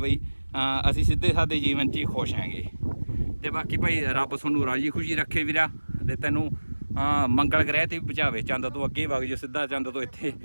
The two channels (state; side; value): inverted; both; correlation -1.00